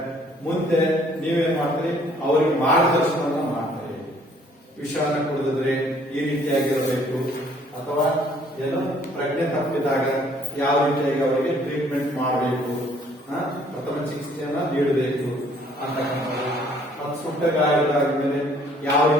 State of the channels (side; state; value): both; normal; correlation 0.60